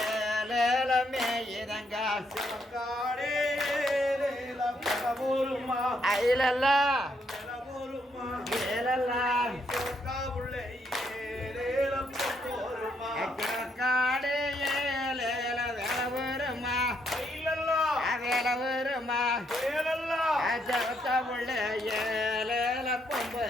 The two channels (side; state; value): both; normal; correlation 0.74